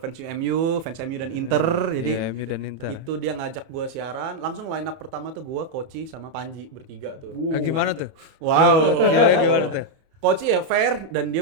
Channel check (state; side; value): late; left; 31 ms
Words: fans MU dan Inter. Jadi Iya, MU dan Inter. itu dia ngajak gue siaran, langsung line up pertama tuh gue, Koci sama Panji bertiga tuh. Gimana tuh? Wow. Gimana tuh? Koci ya fair, dan